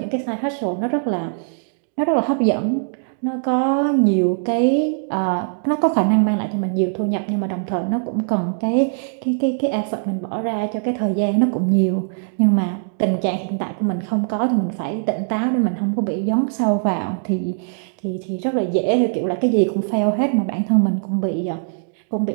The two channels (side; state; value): left; silent; digital silence